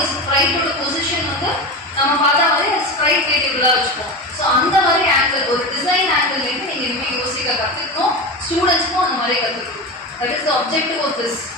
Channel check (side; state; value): both; normal; correlation 0.23